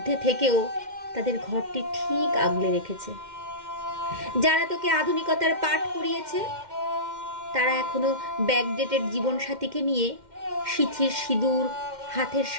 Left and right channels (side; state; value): left; late; 2.1 ms